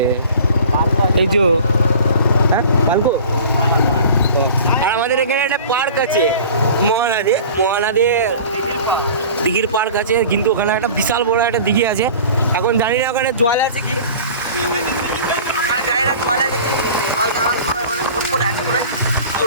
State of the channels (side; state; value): both; inverted; correlation -0.42